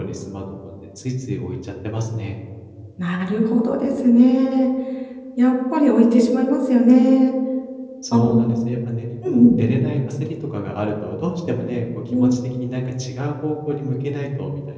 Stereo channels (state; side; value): identical; both; correlation 1.00